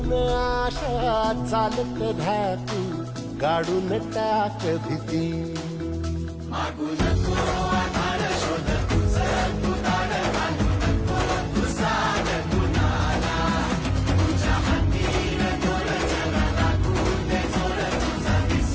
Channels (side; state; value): both; identical; correlation 1.00